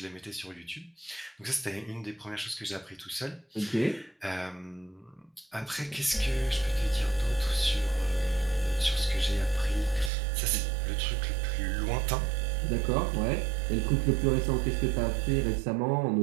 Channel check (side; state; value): left; drops out; at 10.1 s